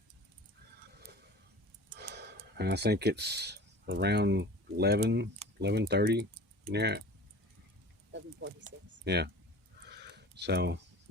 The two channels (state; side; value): normal; both; correlation 0.40